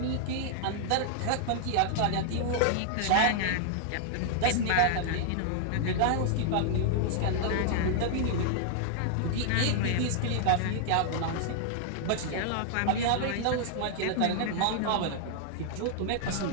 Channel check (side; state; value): both; different; correlation -0.01